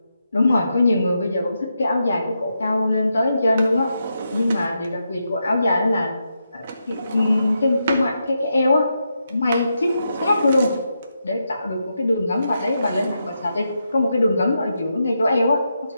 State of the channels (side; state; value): both; inverted; correlation -0.85